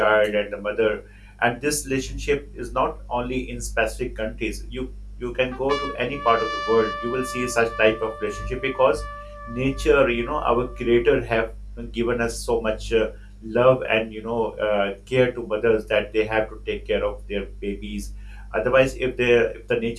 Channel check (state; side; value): identical; both; correlation 1.00